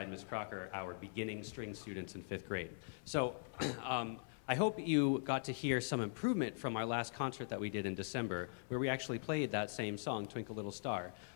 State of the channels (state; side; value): silent; right; 50 dB below the other